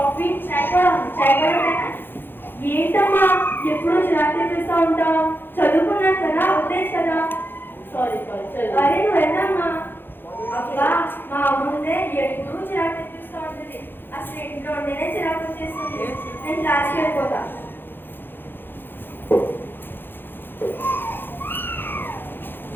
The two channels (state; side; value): late; right; 0.099 ms